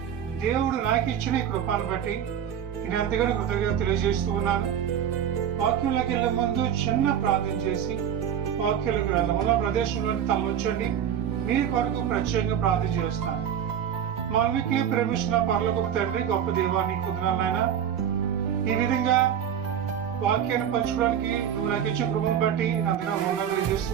దేవుడు నాకు ఇచ్చిన ఈ కృపను బట్టి నేను ఎంతగానో కృతజ్ఞత తెలియజేస్తూ ఉన్నాను. వాక్యంలోకి వెళ్ళే ముందు చిన్న ప్రార్థన చేసి వాక్యంలోకి వెళ్దాం. ఉన్న ప్రదేశంలోని తలొచ్చండి. మీ కొరకు ప్రత్యేకంగా ప్రార్థన చేస్తాను. మా మిక్కిలి ప్రేమిస్తున్న పరలోకపు తండ్రి, గొప్ప దేవాన్ని కుదరాలైనా ఈ విధంగా వాక్యాన్ని పంచుకోవడానికి నువ్వు నాకు ఇచ్చిన కృపను బట్టి అంతగా వందనాలు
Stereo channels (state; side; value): quieter; left; 9.2 dB